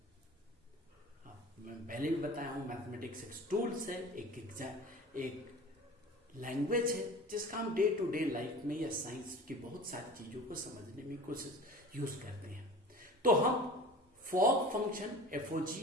मैं पहले भी बताया हूं, मैथमेटिक्स एक टूल्स है, एक लैंग्वेज है जिसका हम डे टू डे लाइफ में या साइंस की बहुत सारी चीजों को समझने में कोशिश यूज करते हैं। तो हम फॉग फंक्शन एफओजी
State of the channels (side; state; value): both; normal; correlation 0.39